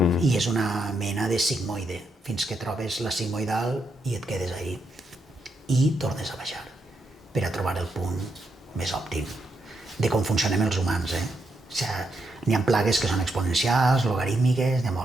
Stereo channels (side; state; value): both; normal; correlation 0.80